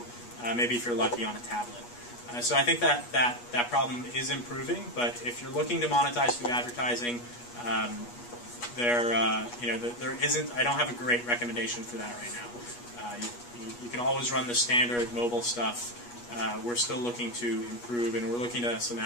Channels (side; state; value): right; late; 8.3 ms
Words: maybe if you're lucky on a tablet. So I think that problem is improving, but if you're looking to monetize through advertising, there isn't. I don't have a great recommendation for that right now. You can always run the standard mobile stuff. We're still looking to improve, and we're looking to some